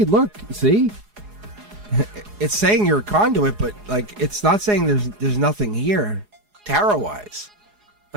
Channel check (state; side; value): late; left; 4.8 ms